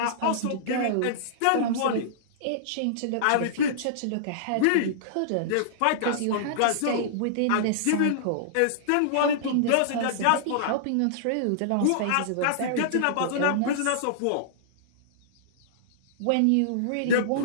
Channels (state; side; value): different; both; correlation -0.02